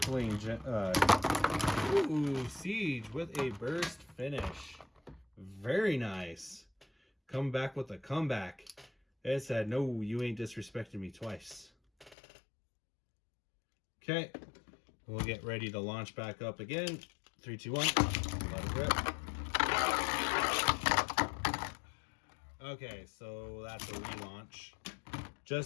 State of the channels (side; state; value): right; drops out; at 12.2 s